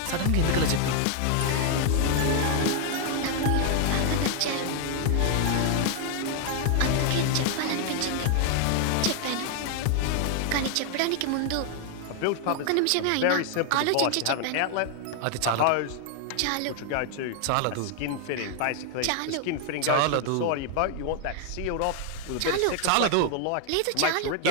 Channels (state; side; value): different; both; correlation 0.00